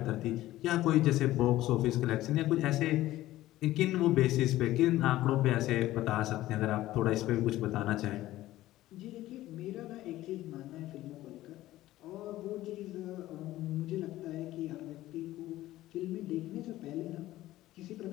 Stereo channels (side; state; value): right; quieter; 15.6 dB